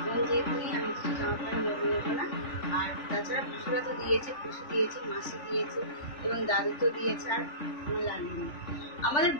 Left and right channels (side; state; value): right; late; 3.4 ms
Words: বোন যেহেতু নেই, আমি কিছু জামা প্যান্ট নেবো না। আর তাছাড়া পুষুরা তো দিয়েছে, পুষু দিয়েছে, মাসি দিয়েছে এবং দাদু তো দিয়েছে, আর আমার লাগবে। আমাদের